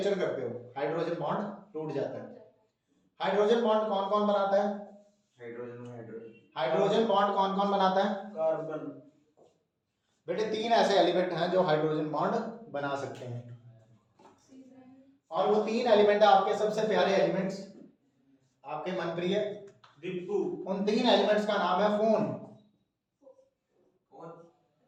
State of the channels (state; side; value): identical; both; correlation 1.00